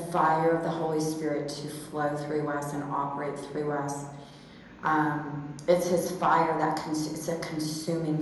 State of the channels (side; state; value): both; identical; correlation 1.00